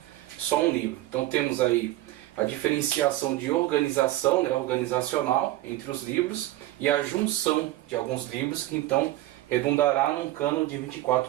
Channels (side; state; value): left; quieter; 16.1 dB